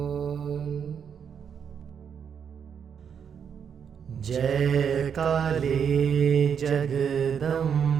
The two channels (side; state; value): left; quieter; 7.5 dB